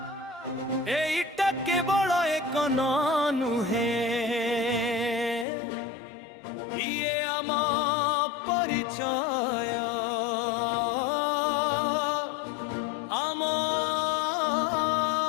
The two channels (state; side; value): drops out; right; at 5.5 s